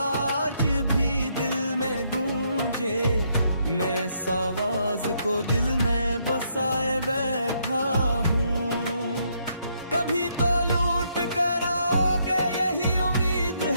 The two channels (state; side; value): inverted; both; correlation -0.74